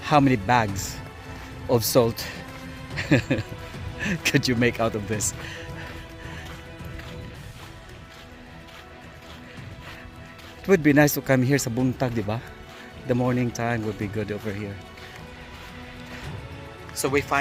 how many bags of salt could you make out of this. It would be nice to come here sa buntag, di ba? The morning time would be good over here. So we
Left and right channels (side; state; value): both; identical; correlation 1.00